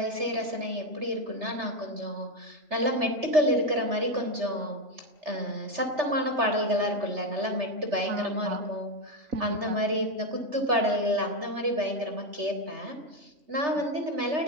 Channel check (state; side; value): late; left; 3.3 ms